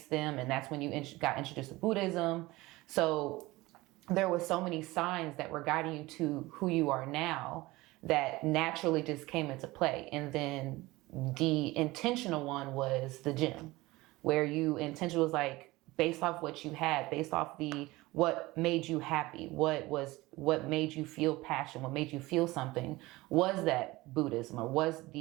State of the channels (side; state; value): left; quieter; 20.1 dB